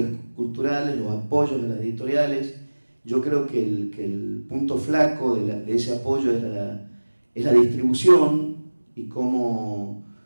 culturales, los apoyos de las editoriales, yo creo que el punto flaco de ese apoyo es la distribución, y cómo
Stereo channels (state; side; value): inverted; both; correlation -1.00